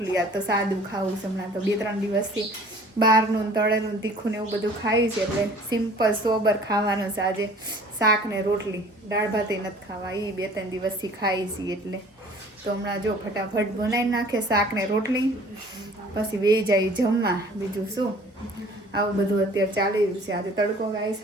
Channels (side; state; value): both; normal; correlation 0.50